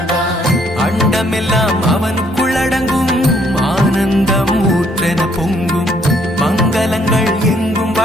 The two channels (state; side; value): normal; both; correlation 0.67